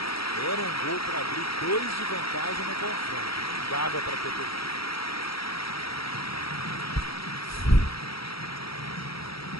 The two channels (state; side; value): late; right; 0.75 ms